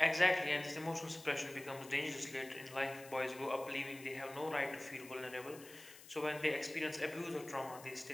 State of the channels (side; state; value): left; noise; hiss, 18 dB below the sound